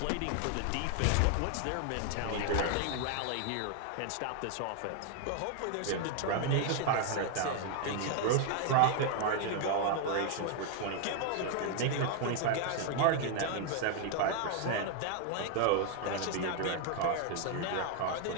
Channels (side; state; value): both; different; correlation 0.00